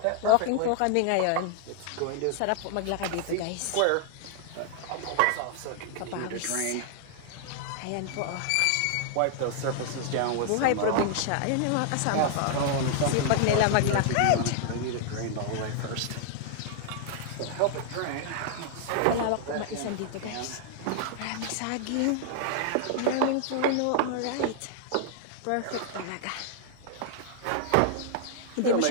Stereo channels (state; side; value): different; both; correlation -0.01